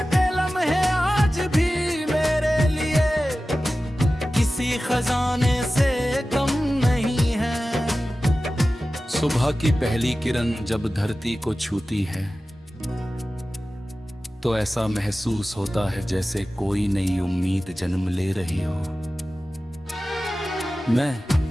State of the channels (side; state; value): both; normal; correlation 0.95